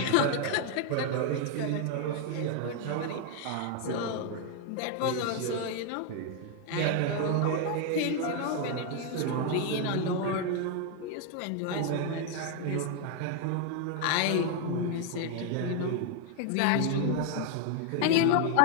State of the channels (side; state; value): both; different; correlation 0.01